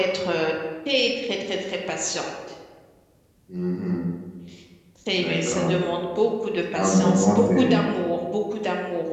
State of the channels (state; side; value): identical; both; correlation 1.00